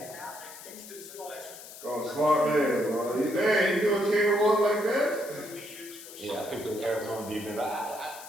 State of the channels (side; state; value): left; noise; hiss, 15 dB below the sound